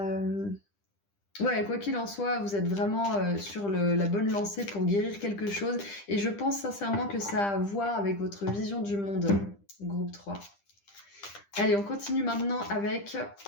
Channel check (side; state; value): right; late; 10 ms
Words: quoi qu'il en soit, vous êtes vraiment sur la bonne lancée pour guérir quelque chose. Et je pense sincèrement que ça a à voir avec votre vision du monde, groupe 3. Allez, on continue maintenant avec